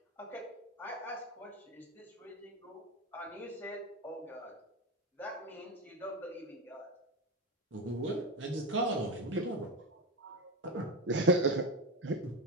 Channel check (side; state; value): both; normal; correlation 0.18